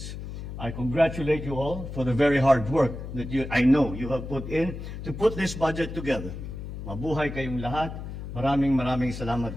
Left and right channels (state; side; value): noise; left; hum, 8 dB below the sound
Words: I congratulate you all for the very hard work that I know you have put in to put this budget together. Mabuhay kayong lahat. Maraming salamat